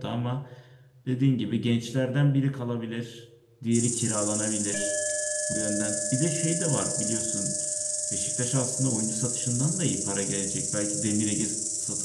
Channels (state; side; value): identical; both; correlation 1.00